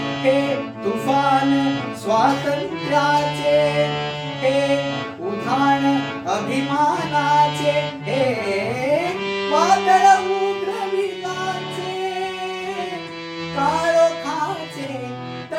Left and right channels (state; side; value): identical; both; correlation 1.00